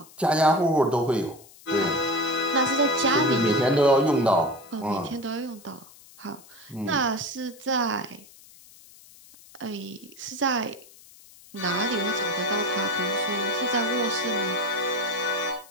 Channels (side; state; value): left; noise; hiss, 23 dB below the sound